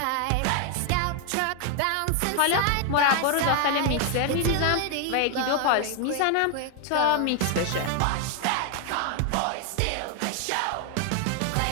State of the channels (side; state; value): both; different; correlation 0.00